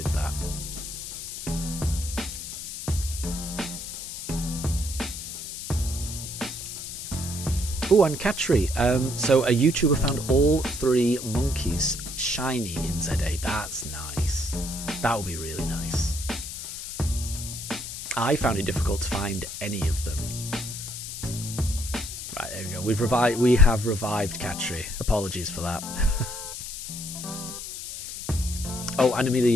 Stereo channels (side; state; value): left; noise; hiss, 8 dB below the sound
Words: that. Oh, and Catry. So a YouTuber found all 3 monkeys shiny in ZA. That's nice. That would be really nice. I found it difficult to find any of them. Right, there we go. We have revived Catry. Apologies for that. Oh, and